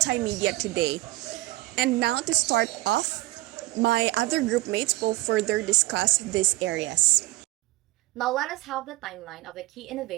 today. And now to start off, my other group mates will further discuss these areas. Now let us have the timeline of the key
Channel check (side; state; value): left; quieter; 19.6 dB